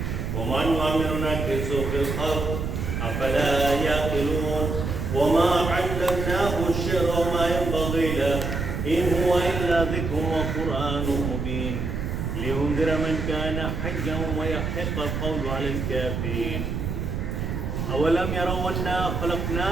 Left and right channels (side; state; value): right; noise; rumble, 3 dB below the sound